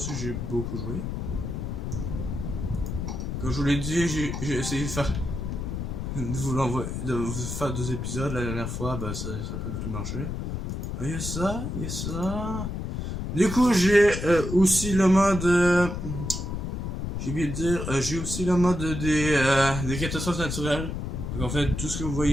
j'ai beaucoup joué. Comme je vous l'ai dit, j'ai essayé de vous faire 2 épisodes la dernière fois, bah ça n'a pas du tout marché. Il y a ça, il y a ça. Du coup, j'ai aussi le mode. J'ai oublié de dire, j'ai aussi le mode des catastrophes naturelles. Donc, en fait, tout ce que vous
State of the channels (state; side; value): noise; left; rumble, 4 dB below the sound